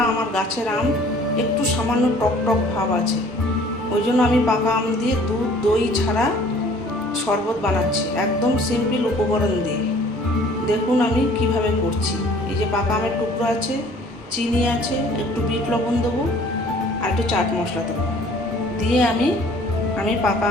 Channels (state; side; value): normal; both; correlation 0.53